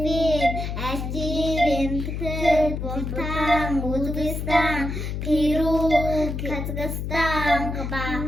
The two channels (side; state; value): left; noise; hum, 4 dB below the sound